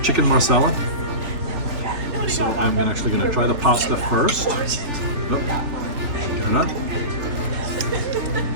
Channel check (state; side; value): late; left; 3.4 ms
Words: chicken marsala. So I'm actually going to try the pasta first. Oh, get it up.